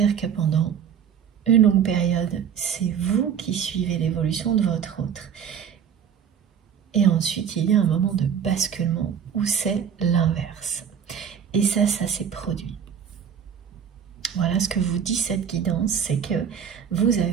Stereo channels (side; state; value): left; quieter; 8.0 dB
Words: que pendant une longue période, c'est vous qui suivez l'évolution de votre autre. Et ensuite, il y a un moment de basculement où c'est l'inverse. Et ça s'est produit. Voilà ce que vous dit cette guidance, c'est que vous